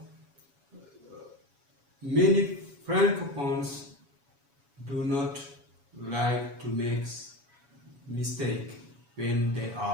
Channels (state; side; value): late; left; 7.1 ms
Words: many francophones do not like to make mistakes when they